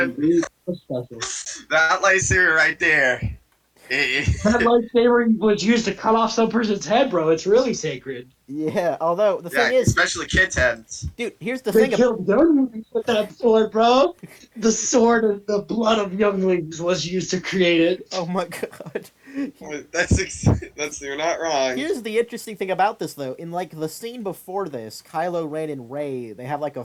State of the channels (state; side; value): identical; both; correlation 1.00